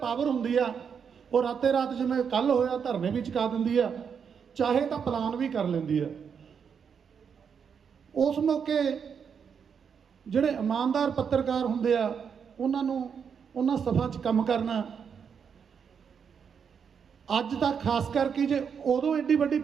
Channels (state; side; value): quieter; left; 6.9 dB